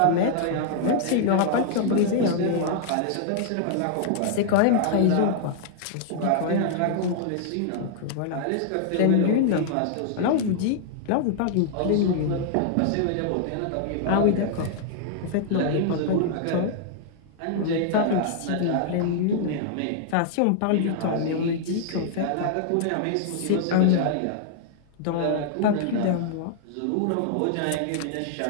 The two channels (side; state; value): both; different; correlation -0.01